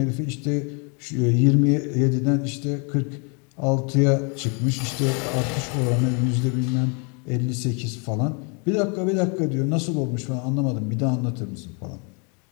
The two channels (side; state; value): right; quieter; 35.4 dB